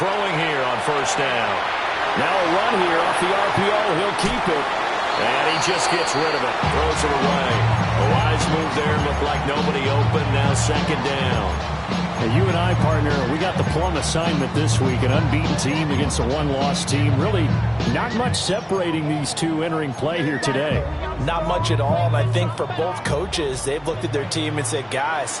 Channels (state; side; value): identical; both; correlation 1.00